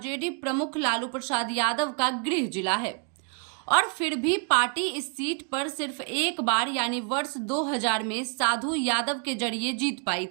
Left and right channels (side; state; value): left; quieter; 37.8 dB